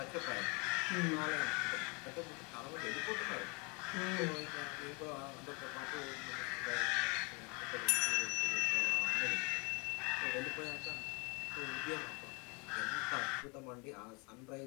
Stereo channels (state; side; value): quieter; right; 30.9 dB